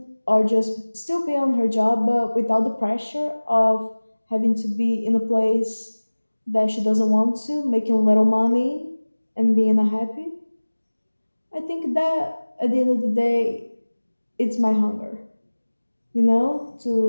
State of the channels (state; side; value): inverted; both; correlation -1.00